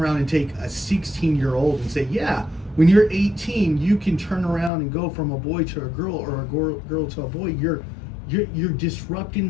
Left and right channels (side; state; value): right; drops out; at 4.7 s